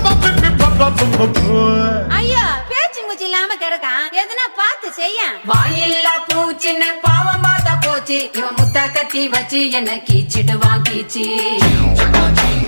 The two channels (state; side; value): inverted; both; correlation -1.00